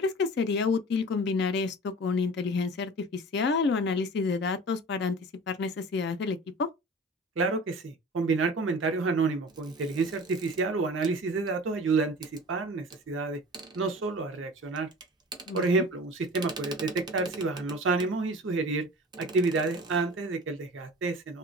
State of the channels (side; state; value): both; normal; correlation 0.39